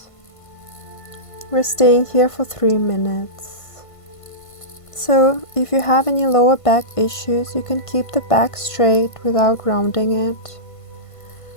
We're staying here for 3 minutes. So if you have any lower back issues, you can keep the back straight without rounding it.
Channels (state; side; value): late; right; 1.5 ms